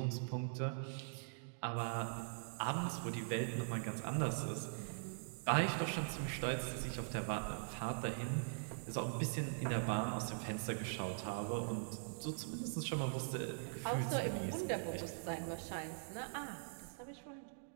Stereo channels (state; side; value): silent; left; digital silence